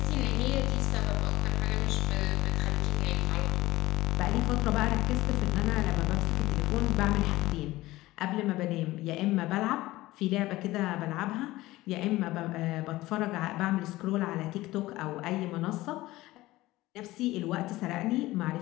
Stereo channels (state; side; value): quieter; right; 17.9 dB